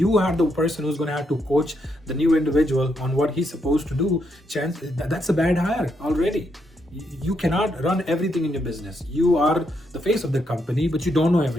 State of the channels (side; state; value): both; normal; correlation 0.78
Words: are the person who's going to have to coach the new individual on what he's supposed to do, that's a bad hire already. You cannot run everything in your business. You are the face of the company, but you don't know